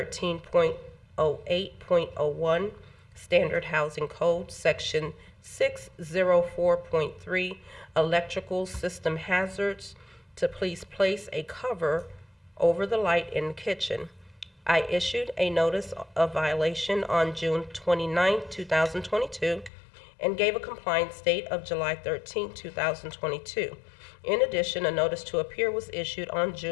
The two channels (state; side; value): drops out; right; at 19.7 s